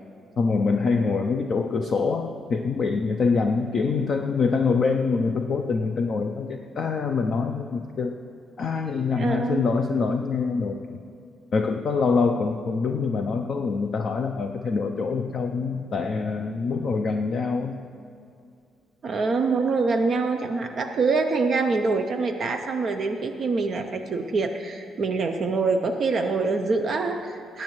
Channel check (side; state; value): both; normal; correlation 0.77